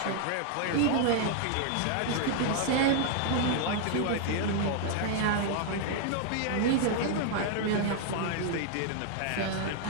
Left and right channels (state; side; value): different; both; correlation 0.00